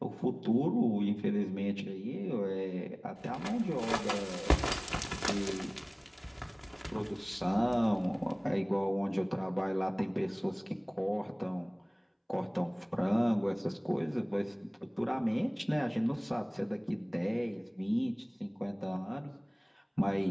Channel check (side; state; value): both; identical; correlation 1.00